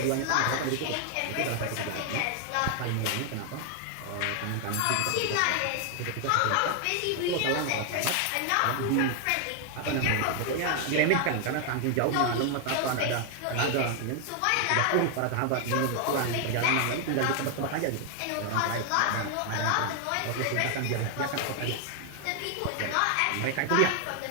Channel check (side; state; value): both; different; correlation 0.00